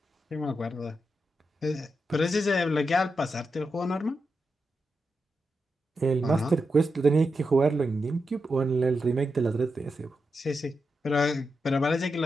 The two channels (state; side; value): normal; both; correlation 0.86